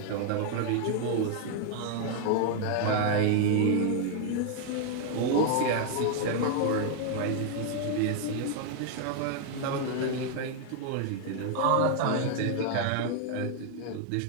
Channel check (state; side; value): different; both; correlation 0.00